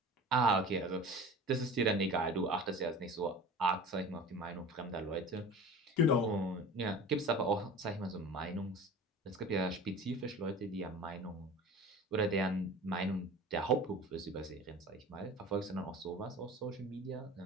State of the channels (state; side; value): normal; both; correlation 0.38